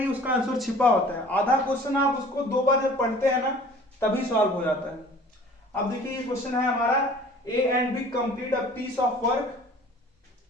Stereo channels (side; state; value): both; normal; correlation 0.48